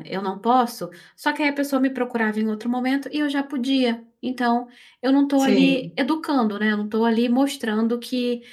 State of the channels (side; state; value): both; identical; correlation 1.00